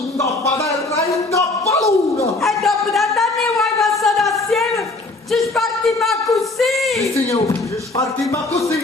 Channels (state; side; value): quieter; right; 3.1 dB